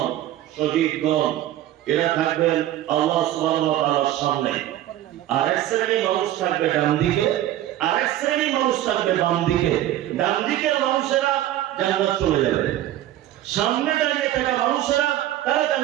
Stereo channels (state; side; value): quieter; left; 13.4 dB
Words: শহীদগণ। এরা থাকবেন আল্লাহ সুবহানাহু ওয়া তাআলার সামনে। আর এক শ্রেণীর মানুষ থাকবে ডান দিকে, আর এক শ্রেণীর মানুষ থাকবে বাম দিকে। ডান দিকের মানুষেরা জান্নাত চলে যাবে, সামনে দাঁড়িয়ে থাকা মানুষেরা তারা